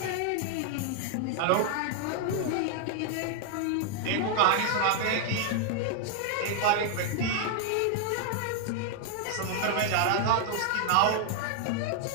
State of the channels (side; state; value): both; different; correlation 0.00